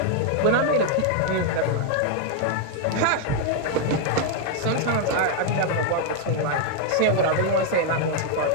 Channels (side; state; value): both; different; correlation 0.00